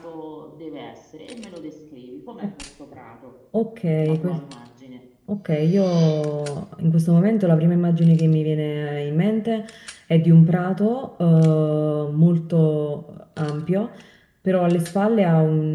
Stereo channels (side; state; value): both; identical; correlation 1.00